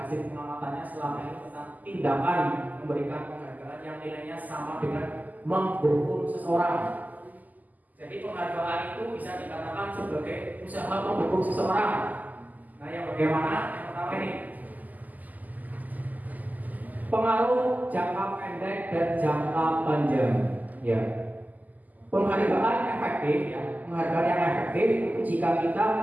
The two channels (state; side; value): late; left; 0.081 ms